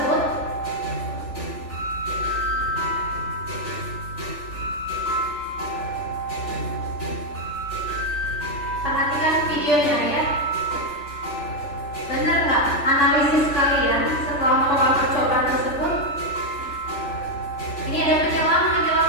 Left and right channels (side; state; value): right; late; 3.4 ms